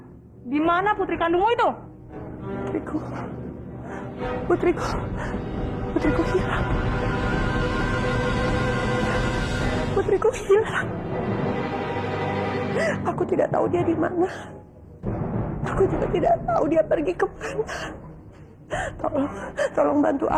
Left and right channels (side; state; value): both; identical; correlation 1.00